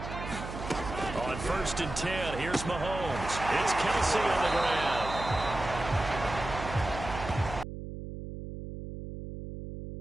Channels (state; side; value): noise; right; hum, 9 dB below the sound